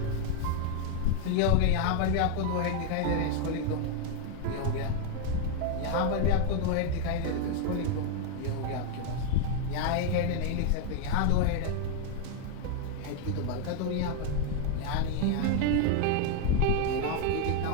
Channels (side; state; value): both; different; correlation 0.01